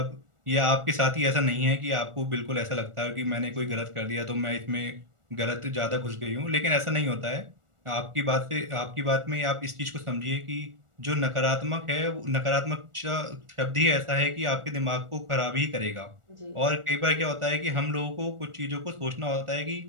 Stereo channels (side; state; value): left; late; 1.4 ms